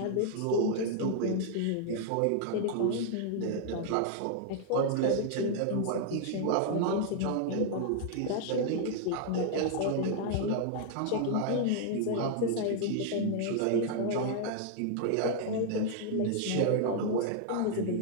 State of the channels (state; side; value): different; both; correlation 0.00